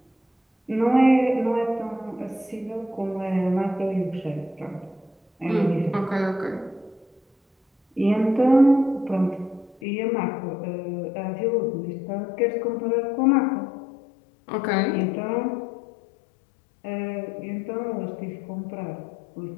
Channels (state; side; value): drops out; right; at 9.8 s